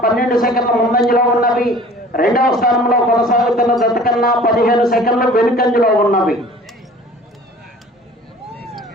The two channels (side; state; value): both; normal; correlation 0.47